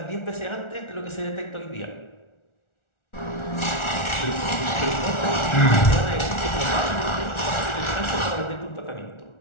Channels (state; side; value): late; right; 1.4 ms